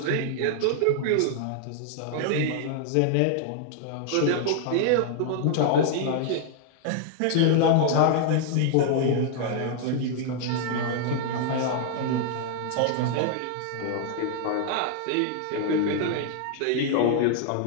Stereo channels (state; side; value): different; both; correlation 0.00